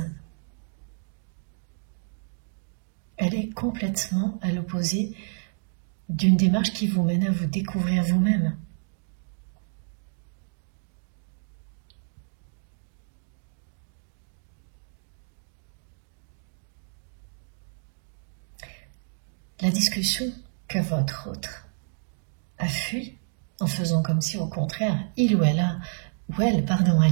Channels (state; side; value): silent; left; digital silence